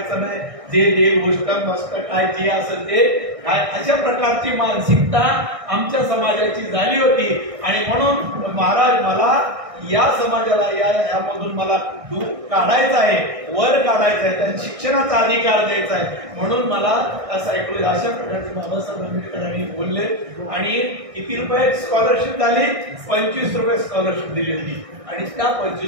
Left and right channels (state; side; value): late; left; 1.6 ms